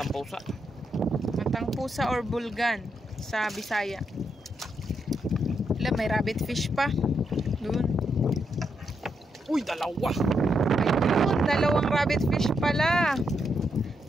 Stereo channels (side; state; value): both; normal; correlation 0.80